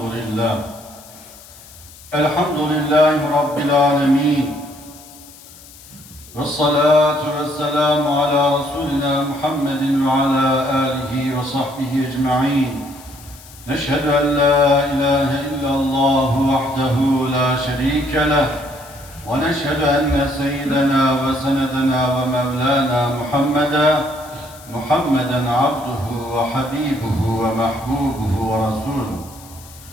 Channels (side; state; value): left; noise; hiss, 21 dB below the sound